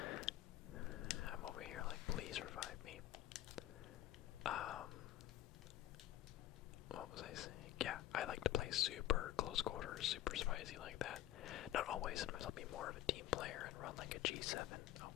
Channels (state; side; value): quieter; right; 13.8 dB